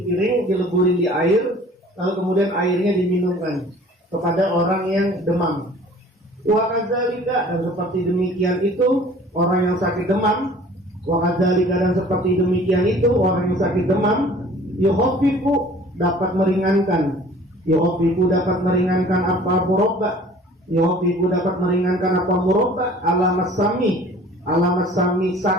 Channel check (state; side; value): normal; both; correlation 0.49